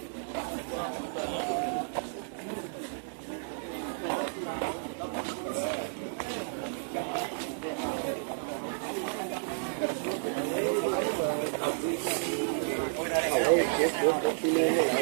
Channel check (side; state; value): left; silent; digital silence